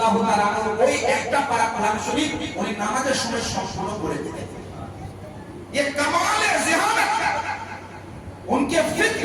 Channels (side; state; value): both; identical; correlation 1.00